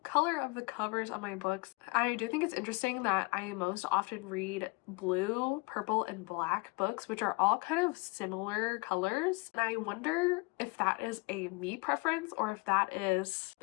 color of the covers on my books. I do think it's interesting that I most often read blue, purple, and black books, which are all kind of similar colors. And I wonder if that is a me preference or if that is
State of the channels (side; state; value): right; quieter; 28.1 dB